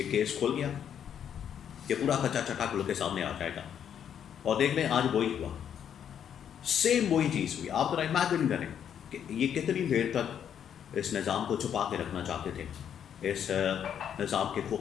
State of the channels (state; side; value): quieter; right; 8.9 dB